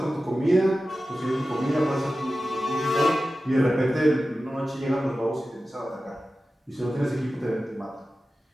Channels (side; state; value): both; normal; correlation 0.94